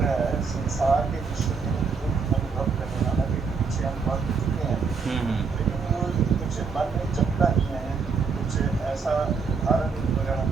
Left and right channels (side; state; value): left; quieter; 5.2 dB